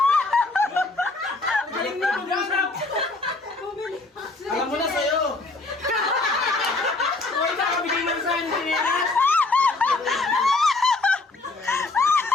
Galing mo mag-usap. Alam mo na sa'yo. Uy, kakabigay mo sa akin chinelas.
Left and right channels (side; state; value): right; quieter; 3.4 dB